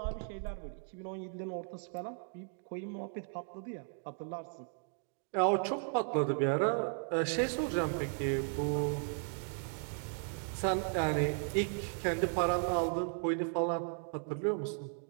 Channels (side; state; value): left; silent; 54 dB below the other